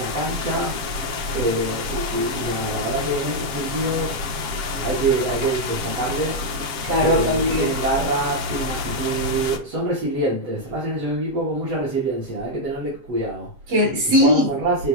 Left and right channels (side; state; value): left; late; 7.4 ms